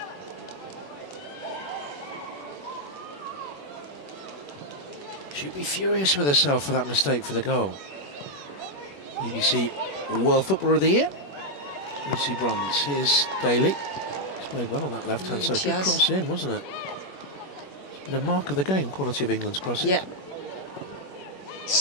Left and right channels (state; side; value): late; right; 21 ms